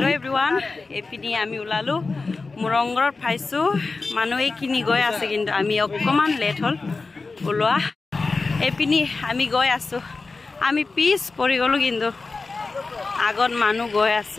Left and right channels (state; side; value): quieter; right; 3.9 dB